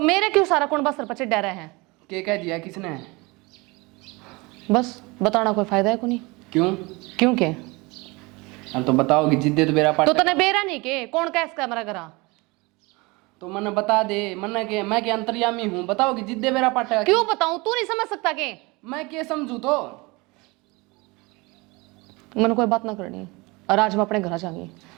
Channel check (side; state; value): left; quieter; 25.1 dB